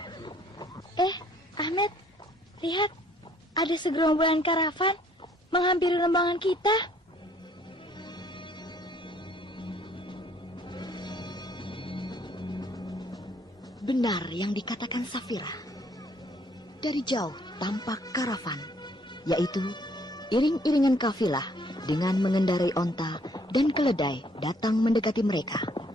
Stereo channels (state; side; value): normal; both; correlation 0.63